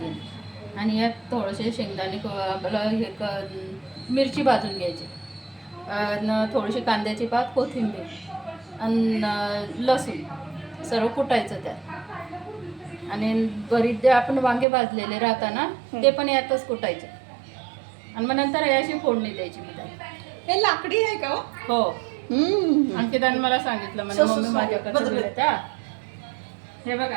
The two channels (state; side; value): drops out; left; at 14.7 s